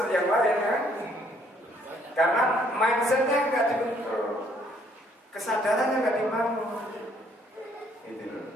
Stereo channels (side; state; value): both; normal; correlation 0.65